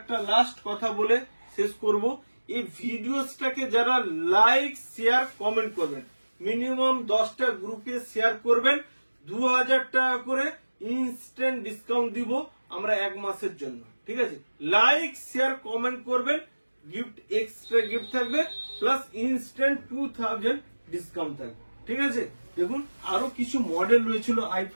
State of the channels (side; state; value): both; inverted; correlation -1.00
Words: লাস্ট কথা বলে শেষ করব, এই ভিডিওসটাকে যারা লাইক শেয়ার কমেন্ট করবেন, মিনিমাম 10টা গ্রুপে শেয়ার করবেন, 2,000 টাকা করে ইনস্ট্যান্ট ডিসকাউন্ট দিব আমরা 1 মাসের জন্য, ঠিক আছে? লাইক শেয়ার কমেন্ট করবেন, গিফট এক্সট্রা গিফট থাকবে, প্লাস ইনস্ট্যান্ট 2,000 ডিসকাউন্ট থাকবে, ঠিক আছে? দেখুন আরো কিছু মডেল রয়েছিল i5